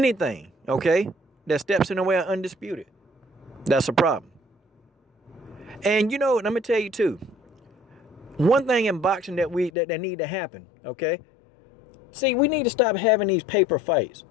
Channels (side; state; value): right; drops out; at 9.7 s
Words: okay, that steps in the way of undisputed, that's a problem. And you know, let me tell you too, one thing in boxing that need to happen, okay? See, we need to stop having these paper fights